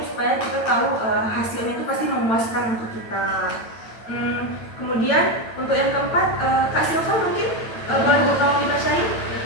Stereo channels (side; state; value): right; late; 9.0 ms